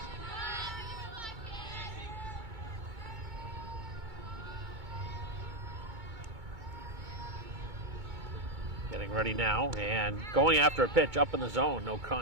Getting ready now and going after a pitch up in the zone, no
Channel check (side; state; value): left; late; 2.2 ms